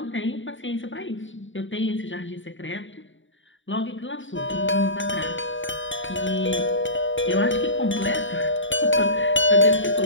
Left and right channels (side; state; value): right; late; 0.56 ms